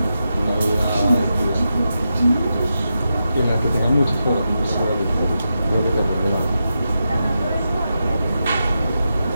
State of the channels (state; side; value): inverted; both; correlation -0.88